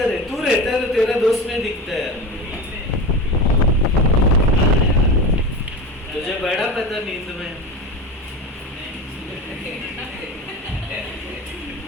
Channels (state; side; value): normal; both; correlation 0.27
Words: है? तू रहता है तो तेरा दोस्त नहीं दिखता है। तुझे बड़ा पता नींद में।